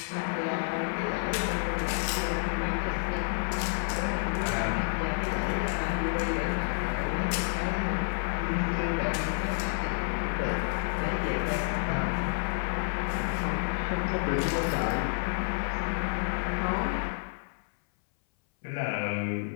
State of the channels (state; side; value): silent; right; 58 dB below the other